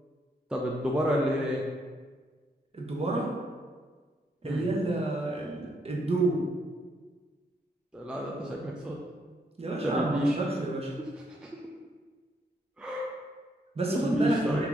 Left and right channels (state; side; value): normal; both; correlation 0.74